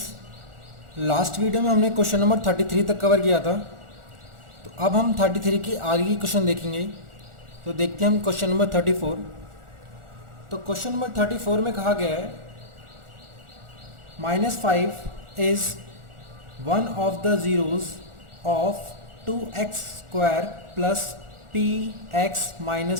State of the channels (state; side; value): late; left; 1.4 ms